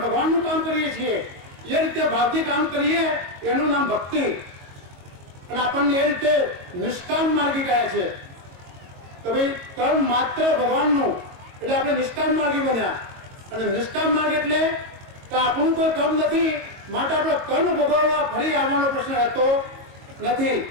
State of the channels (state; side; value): late; left; 22 ms